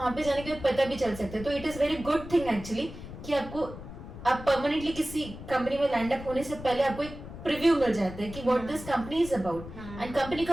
पे जाने के बाद पता भी चल सकता है। तो it is very good thing actually कि आपको आप परमानेंटली किसी कंपनी में लैंड अप होने से पहले आपको एक प्रीव्यू मिल जाता है कि what this company is about, and company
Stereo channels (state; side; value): noise; left; rumble, 12 dB below the sound